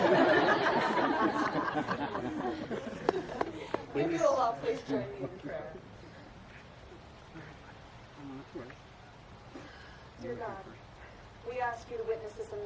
If you will all please join me in prayer. Dear God, we ask you to witness this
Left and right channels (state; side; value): identical; both; correlation 1.00